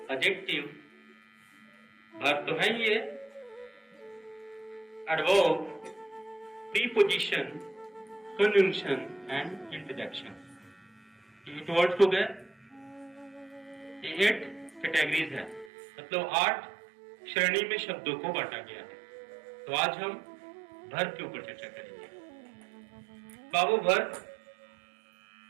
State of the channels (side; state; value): left; drops out; at 15.7 s